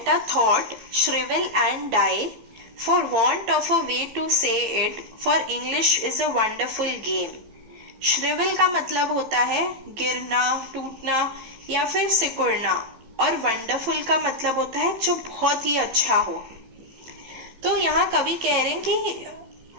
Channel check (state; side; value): late; left; 15 ms